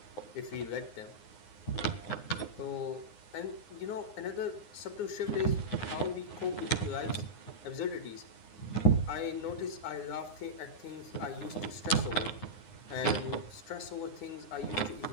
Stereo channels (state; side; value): late; right; 9.7 ms